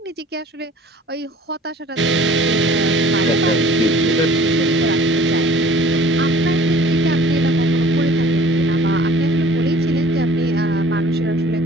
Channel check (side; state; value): both; normal; correlation 0.49